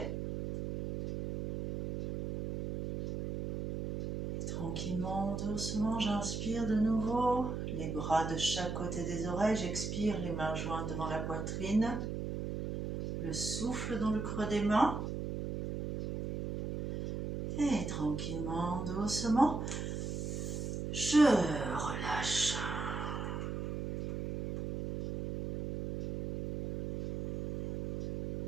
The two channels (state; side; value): noise; right; hum, 4 dB below the sound